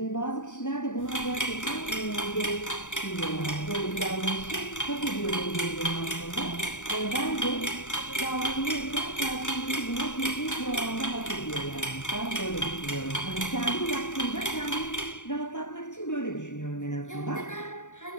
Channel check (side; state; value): right; late; 0.85 ms